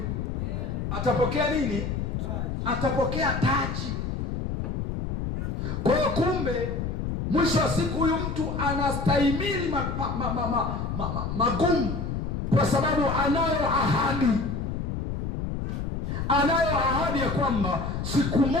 Atapokea nini? Atapokea taji. Kwa hiyo kumbe mwisho wa siku huyu mtu anastahimili magumu kwa sababu anayo ahadi. Anayo ahadi ya kwamba siku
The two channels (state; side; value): noise; left; rumble, 3 dB below the sound